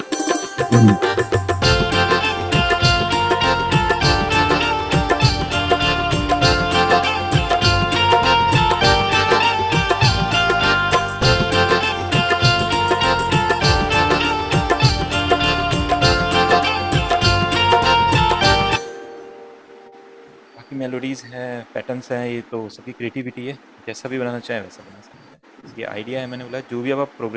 बाकी मेलोडीज़ हैं, पैटर्न्स हैं, ये तो सबकी क्रिएटिविटी है। जैसा भी बनाना चाहें वैसा बना सकते हैं। बस ये आइडिया है, मैंने बोला जो भी अब आप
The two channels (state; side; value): identical; both; correlation 1.00